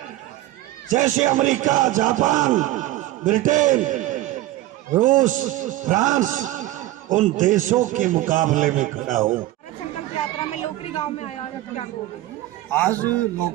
जैसे अमेरिका, जापान, ब्रिटेन, रूस, फ्रांस, उन देशों के मुकाबले में खड़ा हो। भारत संकल्प यात्रा में लोकरी गांव में आया, आप क्या कहोगे? आज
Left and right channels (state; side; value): quieter; left; 15.9 dB